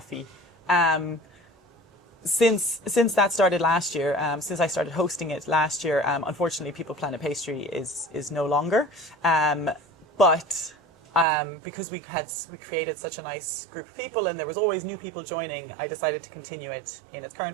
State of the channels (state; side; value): drops out; left; at 11.2 s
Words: Since that started last year, since I started hosting it last year, unfortunately, People Planet Pastry is no longer. But because we created such a nice group of people and there was always new people joining, I decided to continue it in its